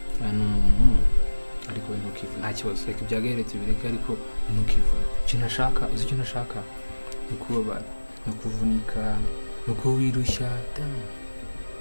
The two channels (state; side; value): inverted; both; correlation -1.00